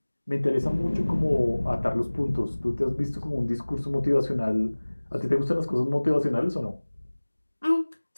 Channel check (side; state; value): both; inverted; correlation -1.00